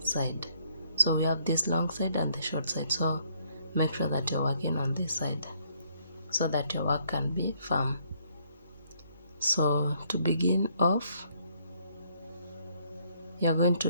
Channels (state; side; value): inverted; both; correlation -0.68